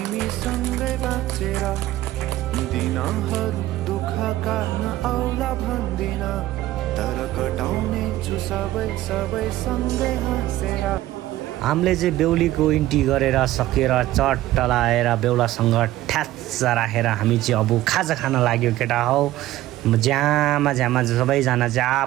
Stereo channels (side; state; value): left; quieter; 15.4 dB